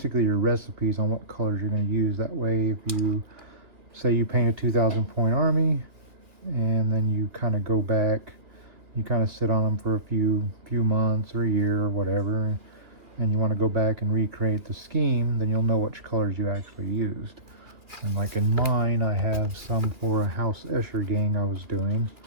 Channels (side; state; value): left; late; 2.5 ms